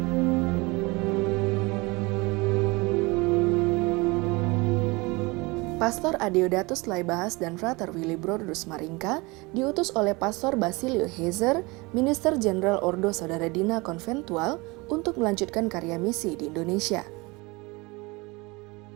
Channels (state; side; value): quieter; left; 25.0 dB